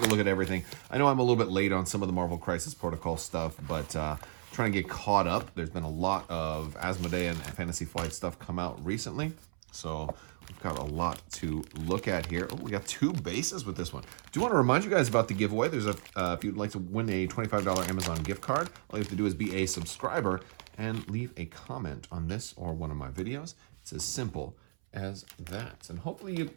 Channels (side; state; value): left; silent; 55 dB below the other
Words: a look at everything. I know I'm a little bit late on some of the Marvel Crisis Protocol stuff, but trying to get caught up. There's been a lot of Asmodee and Fantasy Flight stuff come out recently, so we've got a lot to look at here. Oh, we got two bases with this one. Do want to remind you guys about the giveaway. There's if you'd like to win a $25 Amazon gift card, all you have to do is be a subscriber and leave a comment on this or one of my videos. It's as simple as that. And hopefully you